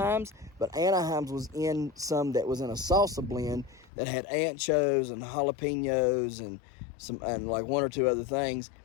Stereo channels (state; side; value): drops out; right; at 3.9 s